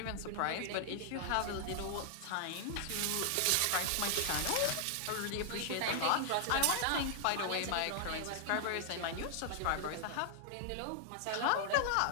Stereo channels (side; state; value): both; different; correlation 0.00